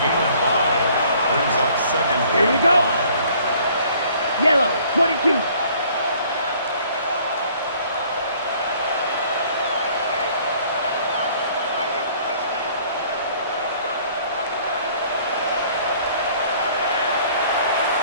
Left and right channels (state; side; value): inverted; both; correlation -0.57